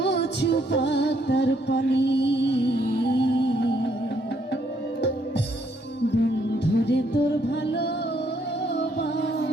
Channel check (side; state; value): both; normal; correlation 0.71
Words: পাতার পানি, বন্ধুরে তোর ভালোবাসা